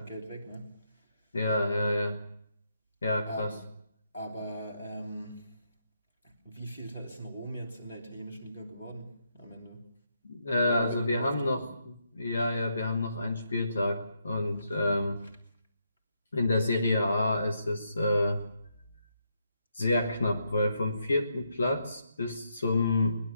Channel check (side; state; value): both; inverted; correlation -0.79